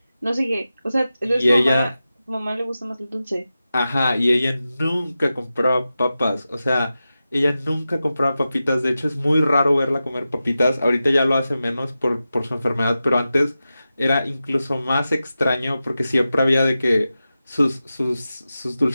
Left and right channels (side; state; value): both; inverted; correlation -0.93